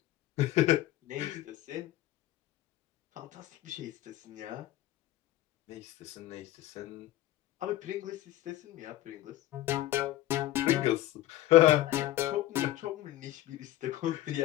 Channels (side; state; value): right; quieter; 15.4 dB